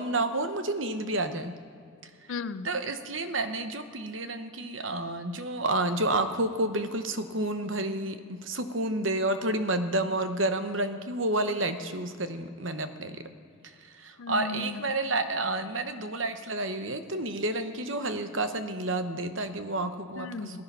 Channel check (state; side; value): normal; both; correlation -0.12